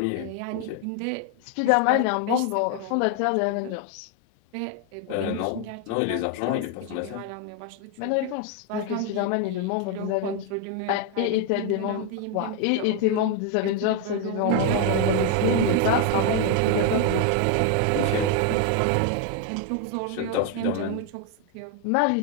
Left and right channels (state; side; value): different; both; correlation 0.01